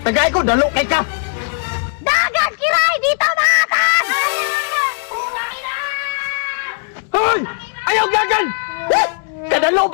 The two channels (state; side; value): silent; right; 68 dB below the other